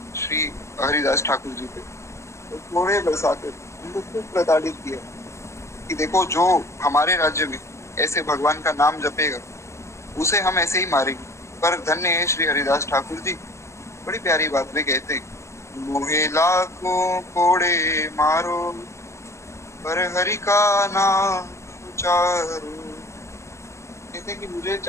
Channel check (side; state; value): right; late; 0.14 ms